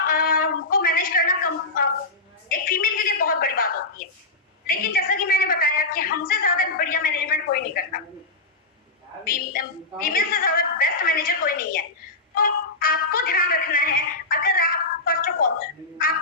को मैनेज करना एक फीमेल के लिए बहुत बड़ी बात होती है। लेकिन जैसा कि मैंने बताया कि हमसे ज्यादा बढ़िया मैनेजमेंट कोई नहीं करता, फीमेल से ज्यादा बेस्ट मैनेजर कोई नहीं है। तो आपको ध्यान रखना है, अगर आप फर्स्ट ऑफ ऑल आप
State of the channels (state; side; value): quieter; right; 3.3 dB